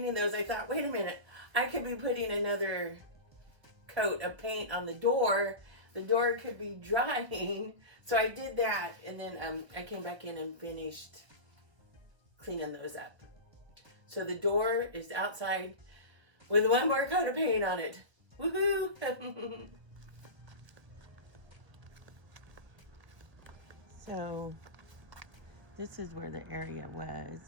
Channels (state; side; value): late; left; 1.3 ms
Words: those, I thought, wait a minute, I could be putting another coat of paint on the door. The door could be drying. So I did that, and then I came back in and finished cleaning those up. So the door is outside with one more coat of paint on it. Woohoo! So this is where the area